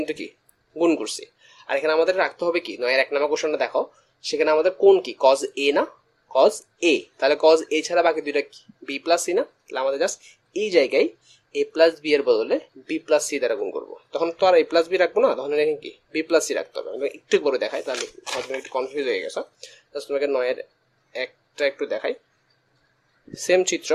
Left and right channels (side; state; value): both; identical; correlation 1.00